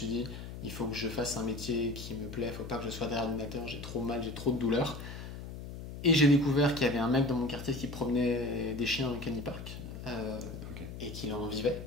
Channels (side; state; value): left; noise; hum, 10 dB below the sound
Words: dit, il faut que je fasse un métier qui me plaît, il faut pas que je sois derrière l'ordinateur, j'ai trop mal, j'ai trop de douleurs. Et j'ai découvert qu'il y avait un mec dans mon quartier qui promenait des chiens au canipark Ok. et qu'il en vivait.